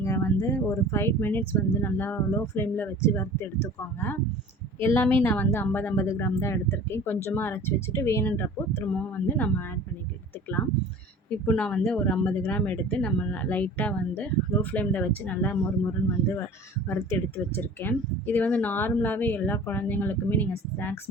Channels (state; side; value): normal; both; correlation 0.43